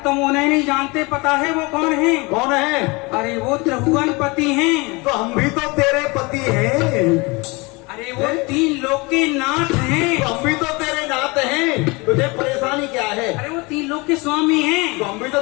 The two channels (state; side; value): quieter; right; 26.2 dB